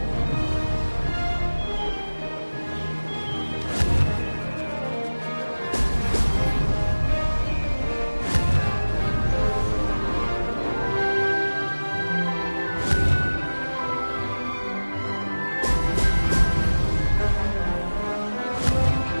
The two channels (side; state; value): both; inverted; correlation -1.00